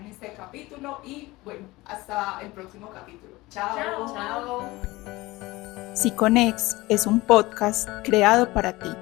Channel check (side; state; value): right; quieter; 20.2 dB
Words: este capítulo y bueno, hasta el próximo capítulo. Chao. Chao. Siconex es un podcast creado para ti.